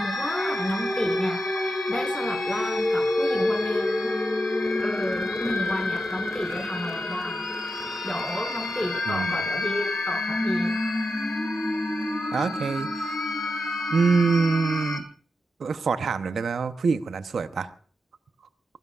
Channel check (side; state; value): both; normal; correlation 0.87